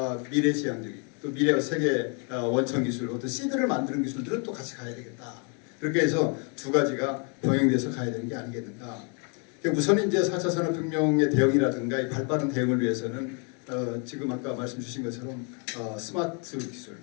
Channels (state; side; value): quieter; right; 35.4 dB